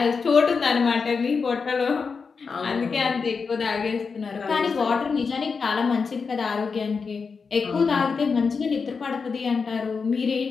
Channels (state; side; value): quieter; right; 5.2 dB